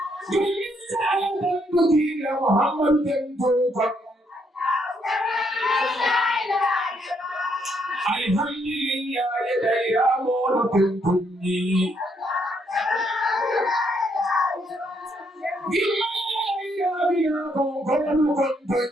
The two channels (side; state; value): both; normal; correlation 0.73